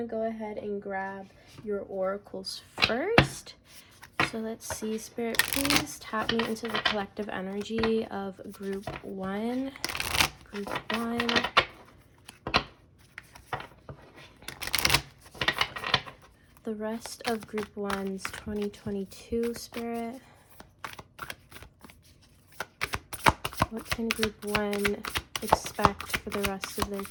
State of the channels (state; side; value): identical; both; correlation 1.00